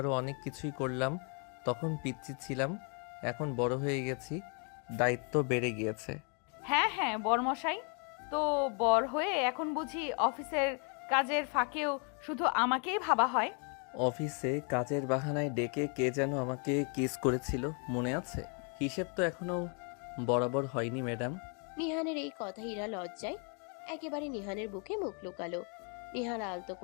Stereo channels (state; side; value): quieter; right; 38.9 dB